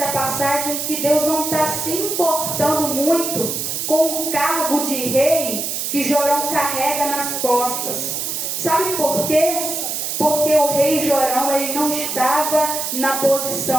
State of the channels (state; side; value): noise; right; hiss, 3 dB below the sound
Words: passagem que Deus não está se importando muito com o cargo de rei que Jorão carrega nas costas. Sabe por quê? Porque o rei Jorão ele não estava na